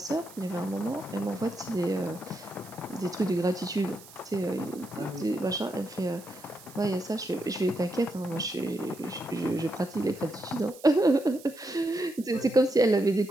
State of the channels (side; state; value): right; noise; hiss, 20 dB below the sound